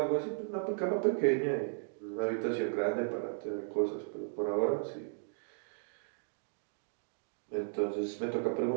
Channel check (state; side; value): silent; left; digital silence